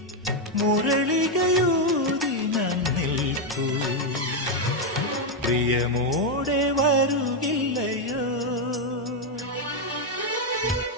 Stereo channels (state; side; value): normal; both; correlation 0.03